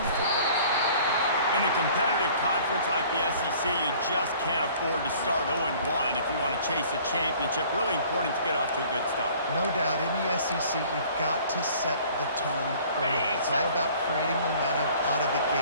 the football game. In a competitive conference like the SEC, you just can't afford to start 0-1 if you want to chase a championship. Really important to get off to a good start. No doubt, in the SEC, you've got to set the tone early. It's all about creating momentum out of the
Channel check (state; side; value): inverted; both; correlation -0.52